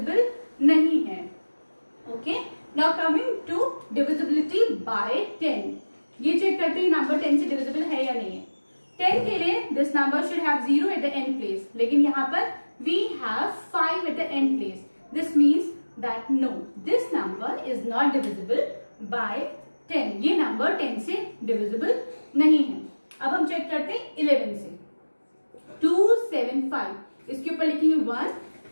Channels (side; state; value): both; inverted; correlation -1.00